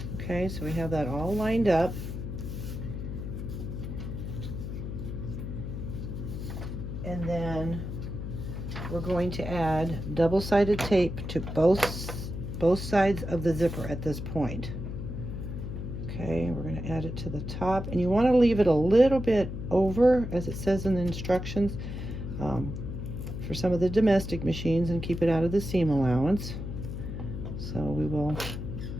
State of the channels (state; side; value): noise; left; hum, 6 dB below the sound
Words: Okay, so we have that all lined up. And then we're going to add double-sided tape to both sides of the zipper at this point. Okay, we're going to add it to the top, and you want to leave it a little bit over, as it says in the instructions, for some of the domestic machines, and keep it out of the seam allowance. So we will